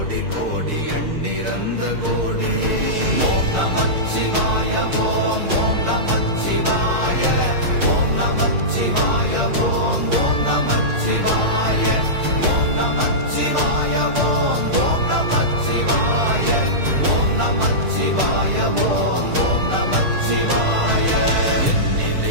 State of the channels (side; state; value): left; late; 6.6 ms